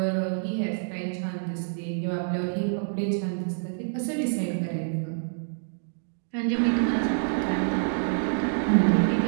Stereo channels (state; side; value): silent; left; digital silence